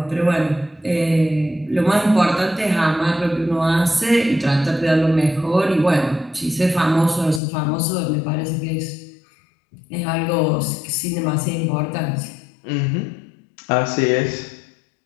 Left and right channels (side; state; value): right; drops out; at 7.4 s